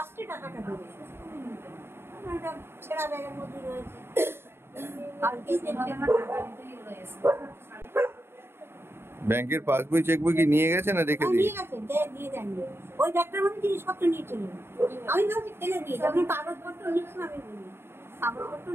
টাকাটা দেবে একটা ছেঁড়া ব্যাগের মধ্যে রয়েছে। ব্যাংকের পাসবই চেকবই কি নিয়ে গেছে না রেখে দিয়ে গেছে? দিয়ে দেননি। ওই ব্যাগটার মধ্যে জিনিসপত্র নিয়ে চলে গেল। আমি ভাবছি ফেলে দিয়েছি, আপনি কাগজপত্র নিস না? আমি বলি কাগজপত্র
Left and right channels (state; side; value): late; left; 0.12 ms